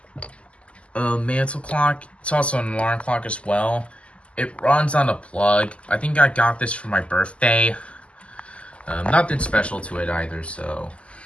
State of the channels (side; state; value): right; late; 0.058 ms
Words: mantle clock. It's also an alarm clock as well. It runs on a plug. I think I got this for my birthday. Nothing special to it either, so